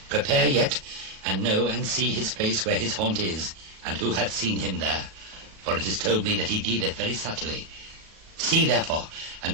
prepare yet, and know and see his place where his haunt is, and who hath seen him there. For it is told me that he dealeth very subtly. See therefore,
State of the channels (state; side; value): late; left; 37 ms